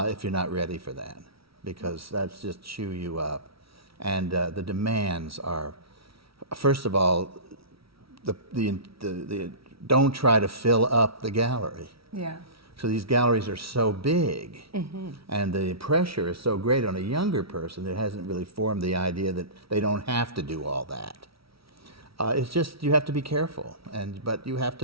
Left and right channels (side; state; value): left; late; 0.75 ms